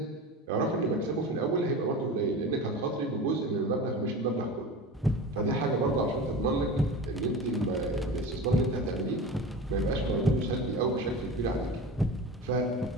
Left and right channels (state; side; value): normal; both; correlation 0.32